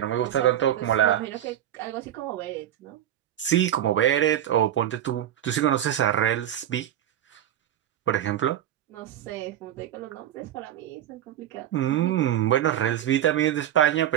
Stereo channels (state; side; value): quieter; left; 11.3 dB